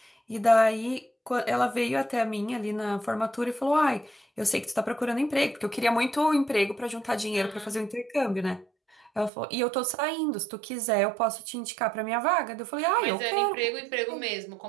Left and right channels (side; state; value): left; drops out; at 9.3 s